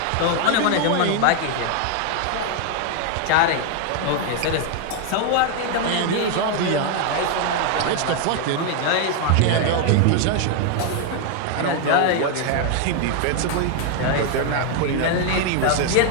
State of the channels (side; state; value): both; different; correlation 0.00